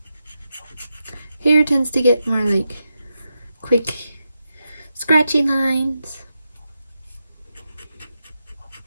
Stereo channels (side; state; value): both; inverted; correlation -0.88